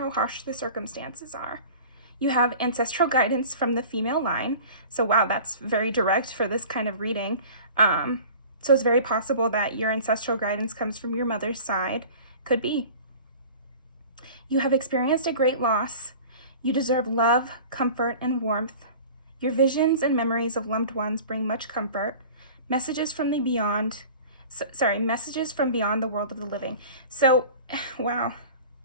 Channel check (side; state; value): both; inverted; correlation -0.41